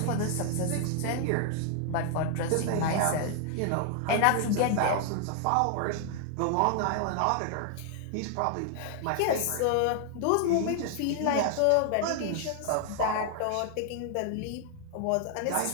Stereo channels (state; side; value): different; both; correlation 0.00